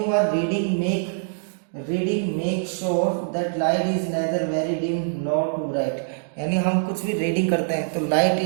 are reading make sure that light is neither very dim nor too bright. यानी हम कुछ भी रीडिंग करते हैं तो लाइट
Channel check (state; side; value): silent; left; digital silence